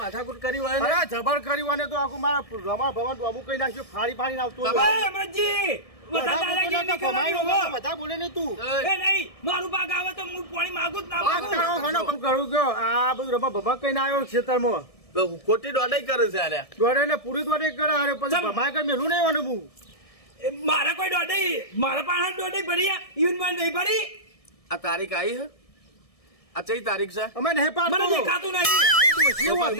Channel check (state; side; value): late; right; 1.6 ms